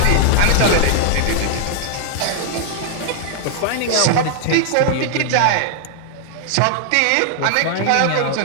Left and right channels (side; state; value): both; different; correlation 0.00